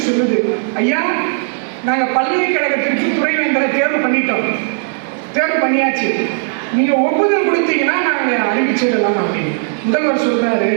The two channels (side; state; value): left; silent; digital silence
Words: சொல்லுது, ஐயா நாங்கள் பல்கலைக்கழகத்திற்கு துணைவேந்தரை தேர்வு பண்ணிட்டோம், தேர்வு பண்ணியாச்சு, நீங்க ஒப்புதல் கொடுத்தீங்கன்னா நாங்கள் அறிவிச்சிடலாம் அப்படின்னு. முதல்வர் சொல்றாரு,